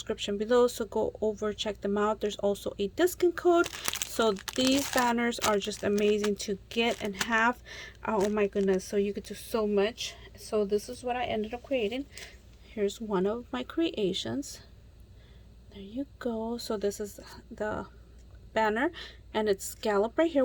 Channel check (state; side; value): identical; both; correlation 1.00